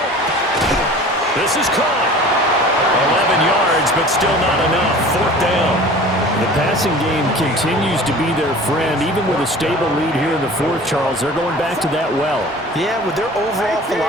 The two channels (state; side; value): normal; both; correlation 0.42